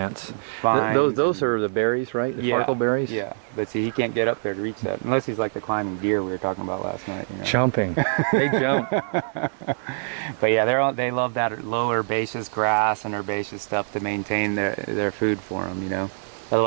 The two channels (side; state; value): left; silent; 57 dB below the other